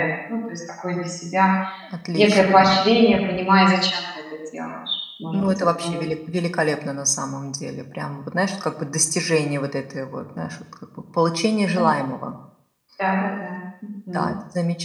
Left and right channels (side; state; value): both; identical; correlation 1.00